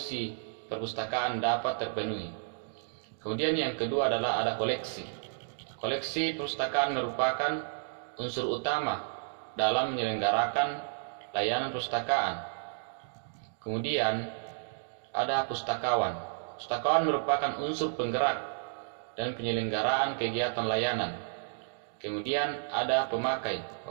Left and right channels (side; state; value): left; silent; digital silence